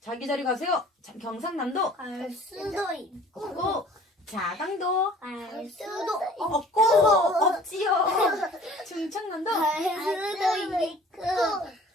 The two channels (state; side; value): normal; both; correlation 0.50